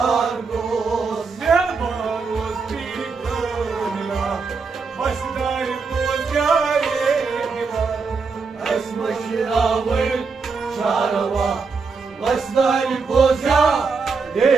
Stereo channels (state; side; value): quieter; left; 4.8 dB